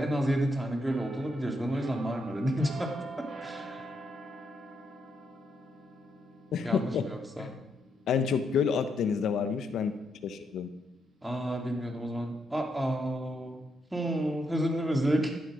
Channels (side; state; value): both; normal; correlation 0.79